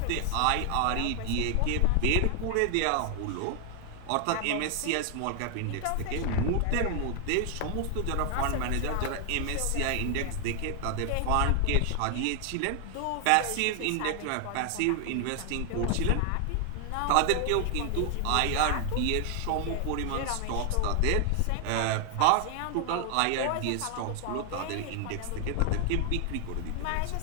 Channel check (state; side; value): different; both; correlation 0.00